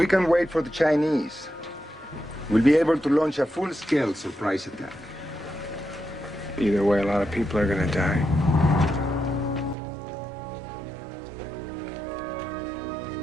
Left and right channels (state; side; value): drops out; left; at 9.8 s